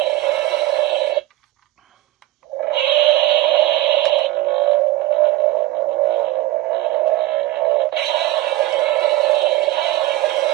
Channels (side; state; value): left; quieter; 17.0 dB